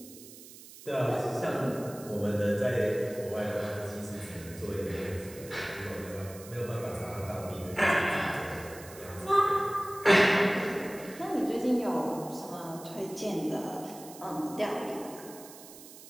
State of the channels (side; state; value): right; noise; hiss, 17 dB below the sound